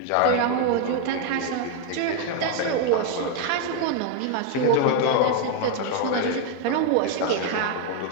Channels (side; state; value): both; different; correlation 0.01